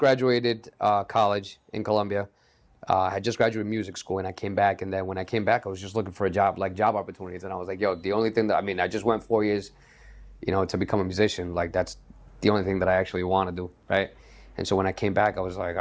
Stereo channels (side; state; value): both; identical; correlation 1.00